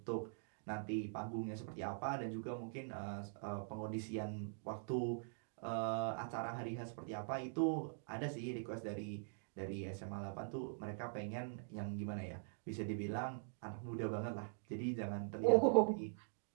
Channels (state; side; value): silent; left; digital silence